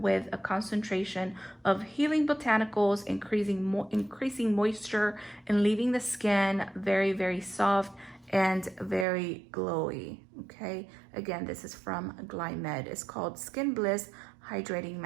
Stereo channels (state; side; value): drops out; left; at 9.1 s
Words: a concentration of healing botanicals, increasing moisture and leaving the skin very, very soft and very glowy. Okay, again, this is from Glam. It's called Skin Bliss Hydrating